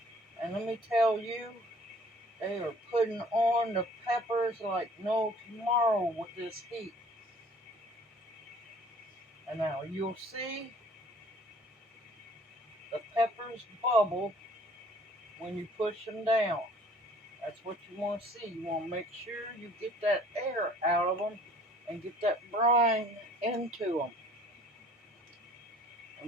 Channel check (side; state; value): both; normal; correlation 0.53